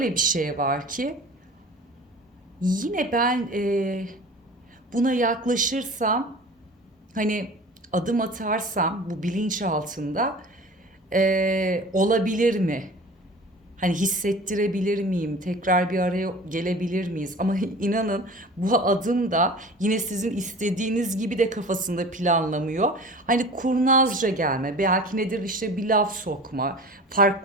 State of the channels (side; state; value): both; normal; correlation 0.40